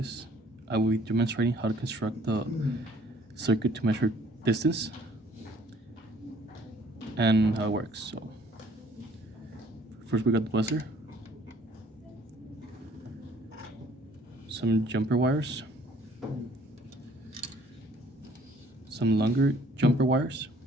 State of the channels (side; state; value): both; normal; correlation 0.58